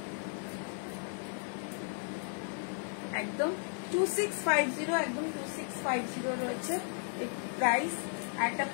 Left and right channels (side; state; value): right; silent; 55 dB below the other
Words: একদম 2650, একদম 2650 রয়েছে প্রাইস। একটা